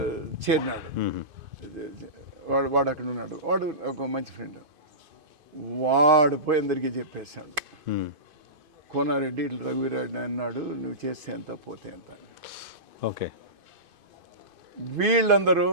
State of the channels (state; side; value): late; left; 2.5 ms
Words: చేరినాడు. వాడు అక్కడ ఉన్నాడు. వాడు ఒక మంచి ఫ్రెండ్. వాడు పోయి అందరికీ చెప్పేశాడు, కోనారెడ్డి ఇట్లా రఘువీరారెడ్డి అన్నాడు, నువ్వు చేస్తే ఎంత పోతే ఎంత. ఓకే. వీళ్ళందరూ